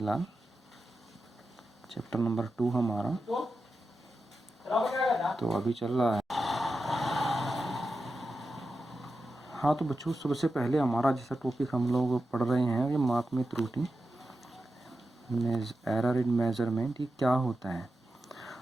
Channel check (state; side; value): normal; both; correlation 0.90